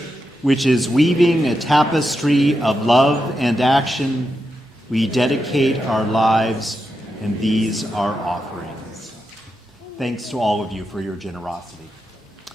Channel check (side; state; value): both; normal; correlation 0.87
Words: which is weaving a tapestry of love and action, we dedicate our lives, and these our offerings. Thanks to all of you for your generosity.